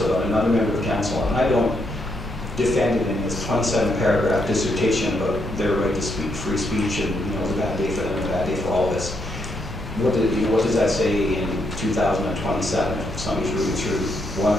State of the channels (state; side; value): normal; both; correlation 0.78